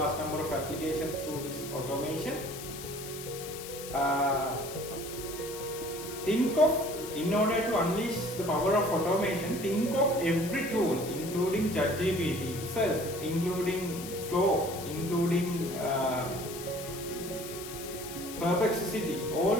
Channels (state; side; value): noise; left; hiss, 11 dB below the sound